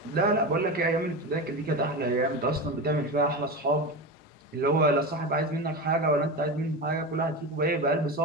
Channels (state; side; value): normal; both; correlation 0.23